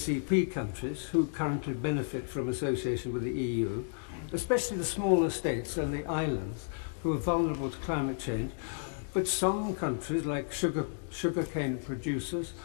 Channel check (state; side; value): silent; right; digital silence